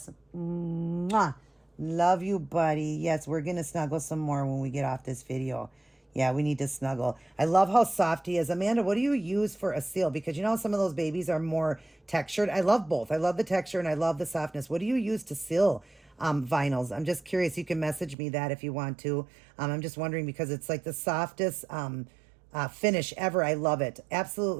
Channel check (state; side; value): drops out; left; at 18.2 s